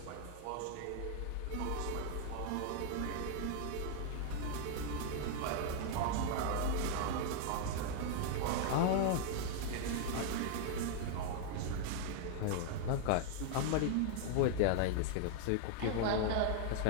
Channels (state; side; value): different; both; correlation 0.00